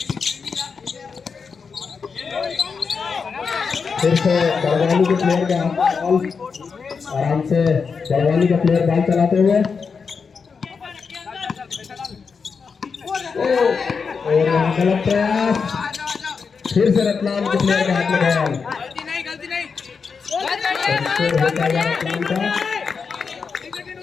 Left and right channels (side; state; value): right; quieter; 5.5 dB